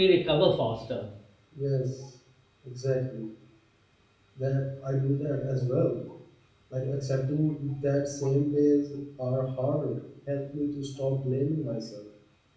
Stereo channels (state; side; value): identical; both; correlation 1.00